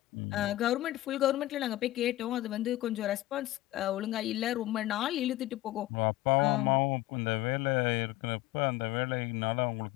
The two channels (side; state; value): right; quieter; 16.2 dB